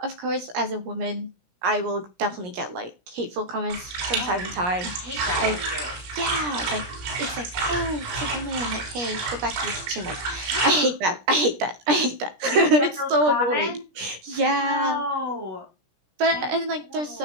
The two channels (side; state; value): left; late; 17 ms